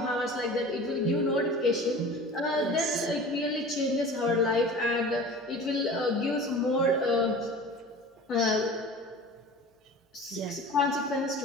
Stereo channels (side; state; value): both; normal; correlation 0.39